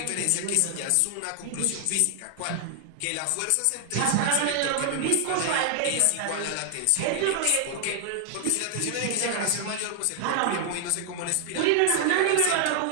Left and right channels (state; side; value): different; both; correlation 0.00